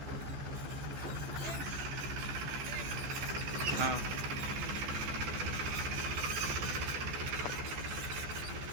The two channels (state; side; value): late; left; 14 ms